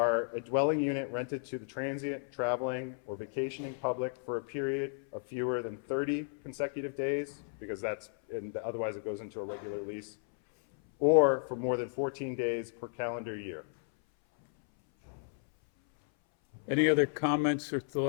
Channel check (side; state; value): right; silent; 55 dB below the other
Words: a dwelling unit rented to the transient, traveling, or vacationing public for a period of fewer than 30 consecutive days, because otherwise it goes into a regular lease, or for more than 14 days per calendar year. Any other comments or